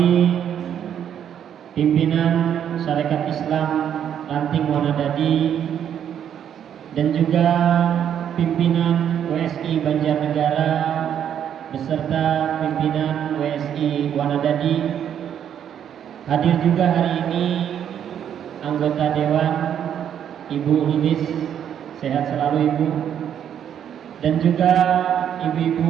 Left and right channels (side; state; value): left; quieter; 9.3 dB